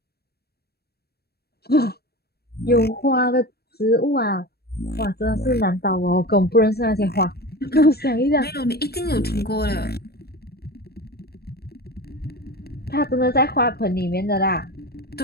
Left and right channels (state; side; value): late; right; 0.46 ms